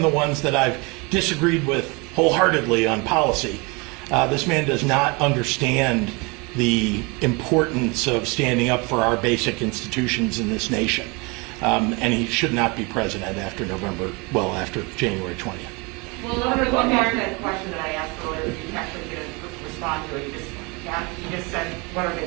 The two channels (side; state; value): left; quieter; 28.4 dB